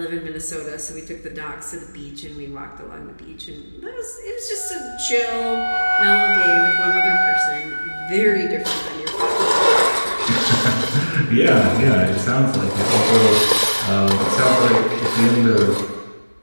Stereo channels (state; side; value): inverted; both; correlation -1.00